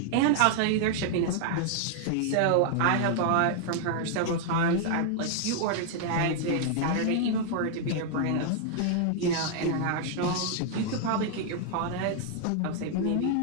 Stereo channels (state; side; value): different; both; correlation 0.00